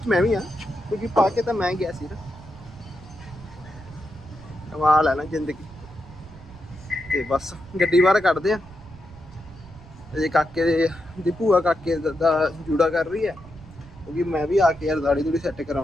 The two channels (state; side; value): noise; right; rumble, 20 dB below the sound